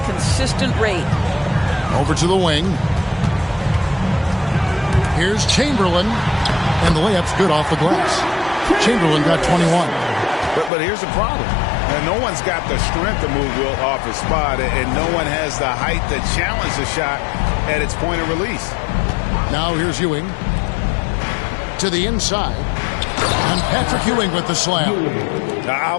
consistent rate. Over to the wing. Here's Chamberlain. And the layup's good off the glass. Chamberlain got 21. But here's the problem. Now, no one's got the strength to move Wilt off his spot, and no one has the height to challenge the shot at its point of release. Now here's Ewing. To the inside. And Patrick Ewing with the slam. I'll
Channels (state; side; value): drops out; right; at 10.7 s